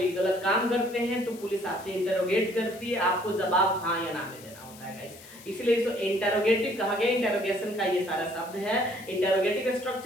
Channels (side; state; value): left; noise; hiss, 19 dB below the sound